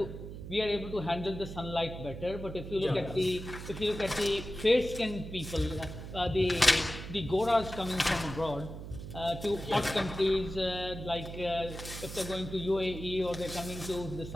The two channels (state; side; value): noise; right; hum, 10 dB below the sound